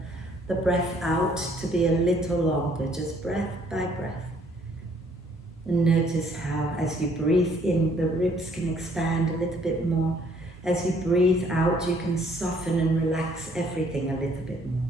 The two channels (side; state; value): both; normal; correlation 0.63